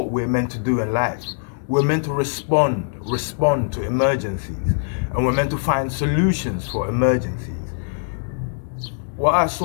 we're meant to do in life. We're meant to respond to emergencies, and we're meant to find solutions for emergencies. What I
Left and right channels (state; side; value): silent; right; digital silence